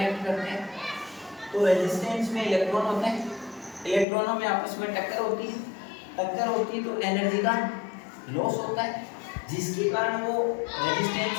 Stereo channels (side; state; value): right; drops out; at 4.0 s